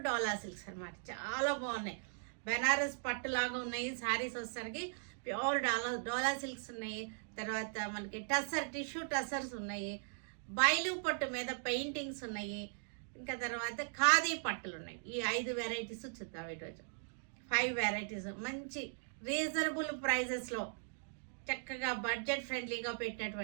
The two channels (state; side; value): silent; left; digital silence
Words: అనమాట. చాలా బాగున్నాయి. బెనారస్ పట్టులాగా ఉన్నాయి శారీస్. వచ్చేసరికి ప్యూర్ డోలా సిల్క్స్ ఉన్నాయి. తర్వాత మనకి టిష్యూ టసర్స్ ఉన్నాయి. బయలు పట్టు మీద పెయింటింగ్స్ ఉన్నాయి. ఇంకా తర్వాత ఖాదీ పట్టులు ఉన్నాయి. ఈ 5 వెరైటీస్ చూద్దాం ఈరోజు. 5 వెరైటీస్ మంచి రీజనబుల్ ప్రైజెస్లో చక్కగా బడ్జెట్ ఫ్రెండ్లీగా